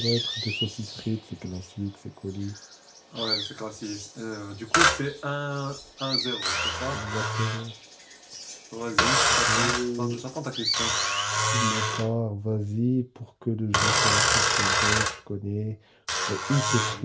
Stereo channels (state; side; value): identical; both; correlation 1.00